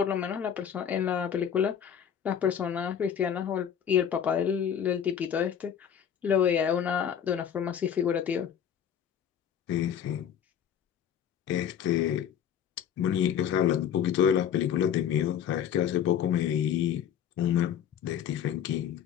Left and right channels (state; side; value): quieter; right; 8.9 dB